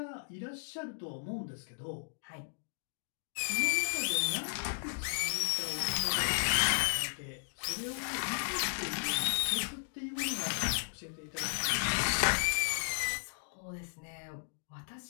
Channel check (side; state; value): right; silent; digital silence